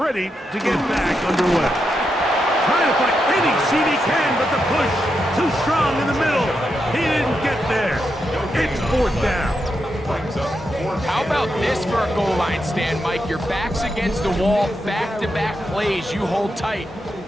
to get back underway. Trying to find any seat he can, but the push too strong in the middle. He didn't get there. It's 4th down. How about this for a goal line stand, Mike? Your back's against the wall, back-to-back plays. You hold tight.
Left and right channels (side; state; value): both; normal; correlation 0.85